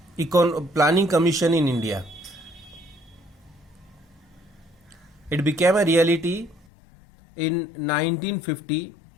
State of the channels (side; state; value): right; drops out; at 6.7 s